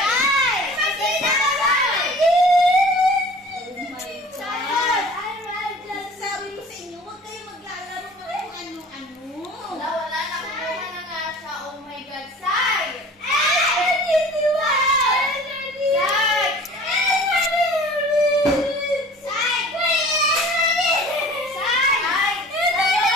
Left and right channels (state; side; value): normal; both; correlation 0.45